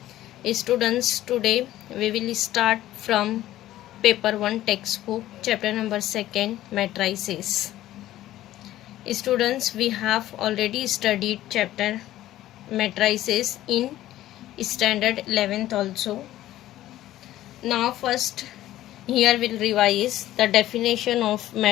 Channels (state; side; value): quieter; right; 14.2 dB